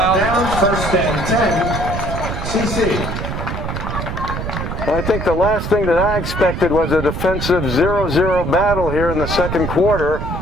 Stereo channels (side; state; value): right; noise; rumble, 4 dB below the sound